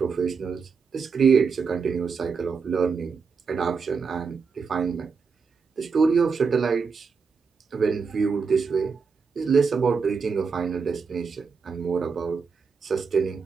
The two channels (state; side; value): quieter; left; 5.4 dB